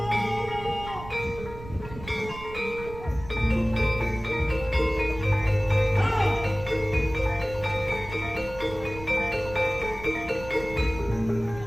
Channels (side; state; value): right; noise; rumble, 14 dB below the sound